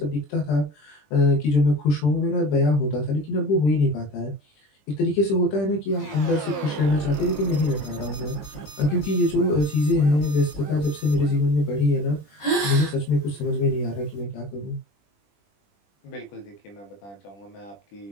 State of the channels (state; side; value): late; right; 20 ms